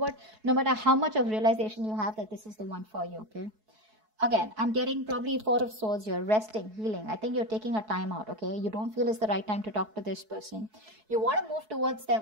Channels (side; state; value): left; late; 4.7 ms